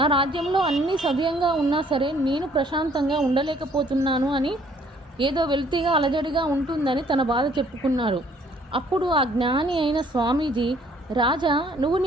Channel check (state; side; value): normal; both; correlation 0.61